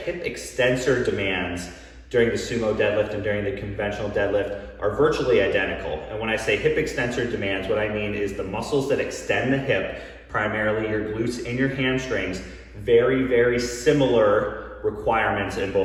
extensor demands during the sumo deadlift and during the conventional deadlift are virtually identical. And when I say hip extensor demands, what I mean is the muscles that extend the hip, primarily your glutes and your hamstrings, very, very similar requirements in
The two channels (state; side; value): identical; both; correlation 1.00